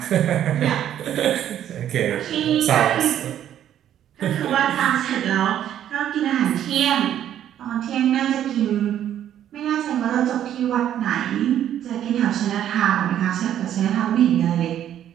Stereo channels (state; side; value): quieter; left; 10.8 dB